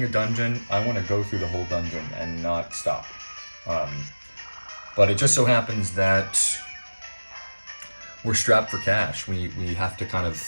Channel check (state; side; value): inverted; both; correlation -1.00